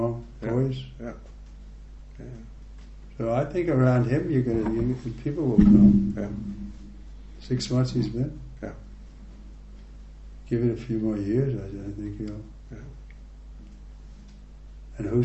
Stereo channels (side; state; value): both; identical; correlation 1.00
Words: poise. Yeah. So I think around him, people will come. Yeah. 6 months he's been. Yeah. Give it a few more years, I think he'll. Yeah. And